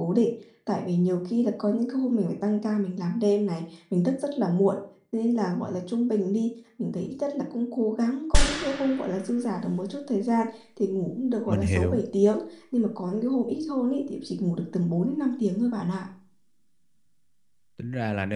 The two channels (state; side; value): identical; both; correlation 1.00